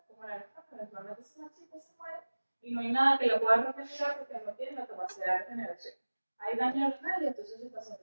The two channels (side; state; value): both; inverted; correlation -1.00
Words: como la nefrona, eventualmente se marchita, se muere, y no hay nada que la pueda regenerar porque no tiene la capacidad de regeneración. Hay daño renal y entonces el